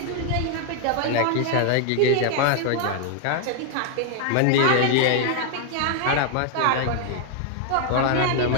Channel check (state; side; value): different; both; correlation 0.00